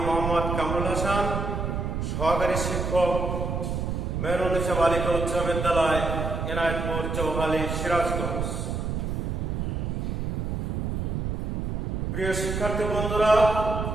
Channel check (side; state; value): right; noise; rumble, 1 dB below the sound